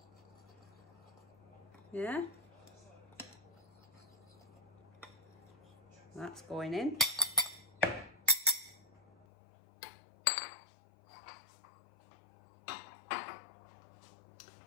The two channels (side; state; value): right; drops out; at 9.2 s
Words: Yeah? That's going in.